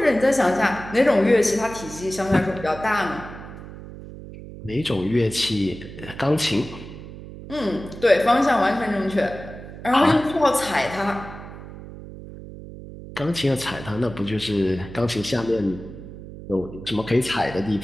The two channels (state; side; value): noise; right; hum, 13 dB below the sound